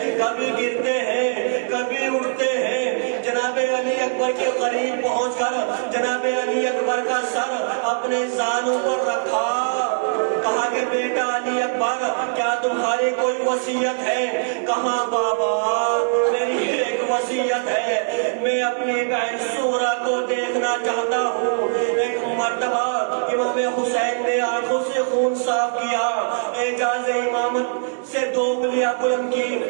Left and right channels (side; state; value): left; silent; 64 dB below the other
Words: کبھی گرتے ہیں کبھی اٹھتے ہیں۔ جناب علی اکبر کے قریب پہنچ کر جناب علی اکبر کا سر اپنے زانوں پر رکھا، کہا کہ بیٹا علی اکبر کیا تمہاری کوئی وصیت ہے؟ کہا بابا میری ایک وصیت ہے، میں اپنی بہن سورہ کو دیکھنا چاہتا ہوں۔ ایک مرتبہ امام حسین نے آنکھوں سے خون صاف کیا، اعجاز امامت سے 2 انگلیاں بلند کی